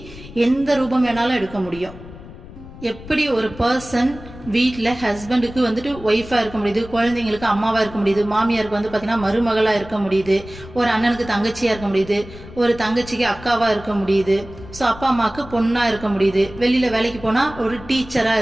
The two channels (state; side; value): noise; left; rumble, 16 dB below the sound